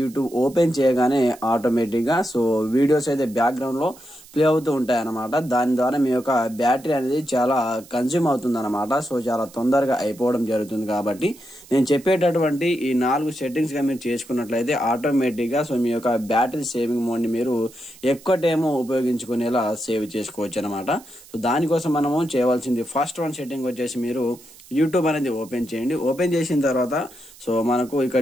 ఓపెన్ చేయగానే ఆటోమేటిక్ గా వీడియోస్ అయితే బ్యాక్గ్రౌండ్ లో ప్లే అవుతూ ఉంటాయి అన్నమాట. దాని ద్వారా మీ యొక్క బ్యాటరీ అనేది చాలా కన్స్యూమ్ అవుతుంది అనమాట. చాలా తొందరగా అయిపోవడం జరుగుతుంది. కాబట్టి నేను చెప్పేటటువంటి ఈ 4 సెట్టింగ్స్ గా మీరు చేసుకున్నట్లయితే ఆటోమేటిక్ గా మీ యొక్క బ్యాటరీ సేవింగ్ మోడ్ ని మీరు ఎక్కువ టైం ఉపయోగించుకునేలా సేవ్ చేసుకోవచ్చు అనమాట. దానికోసం మనము చేయవలసింది ఫస్ట్ వన్ సెట్టింగ్ వచ్చేసి మీరు యూట్యూబ్ అనేది ఓపెన్ చేయండి. ఓపెన్ చేసిన తర్వాత మనకు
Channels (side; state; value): right; noise; hiss, 22 dB below the sound